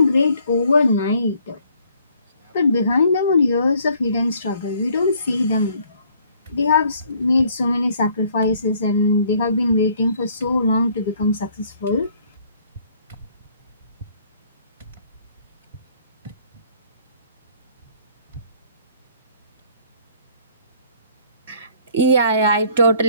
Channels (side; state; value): both; inverted; correlation -0.61